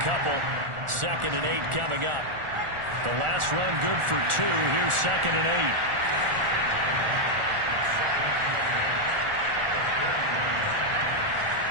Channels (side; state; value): left; late; 1.4 ms